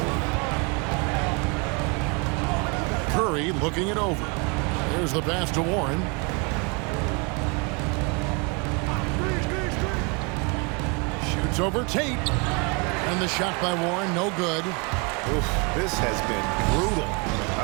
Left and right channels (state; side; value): quieter; left; 31.4 dB